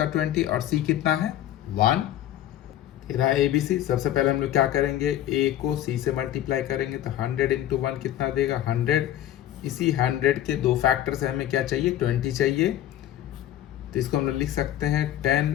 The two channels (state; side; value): quieter; right; 12.3 dB